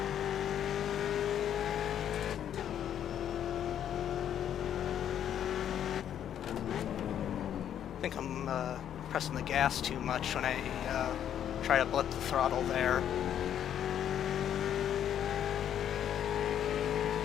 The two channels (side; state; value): right; quieter; 9.9 dB